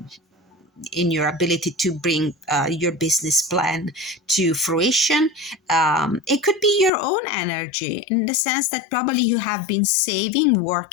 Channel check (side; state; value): right; drops out; at 6.9 s